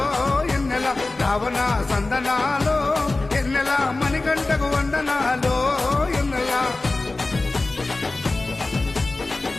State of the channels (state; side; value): quieter; right; 3.2 dB